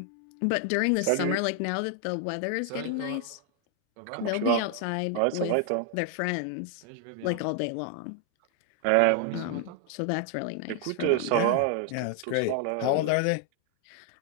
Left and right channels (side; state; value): both; different; correlation 0.00